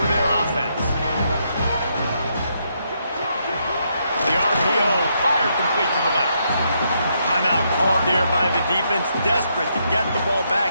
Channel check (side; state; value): both; inverted; correlation -0.77